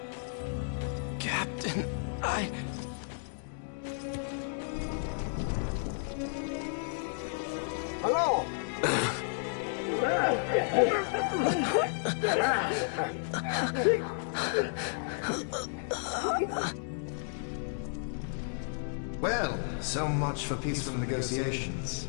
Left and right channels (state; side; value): silent; right; digital silence